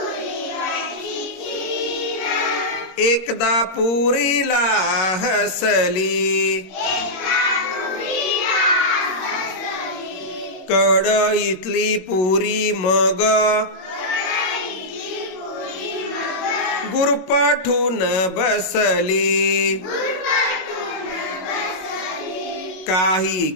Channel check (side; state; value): right; late; 21 ms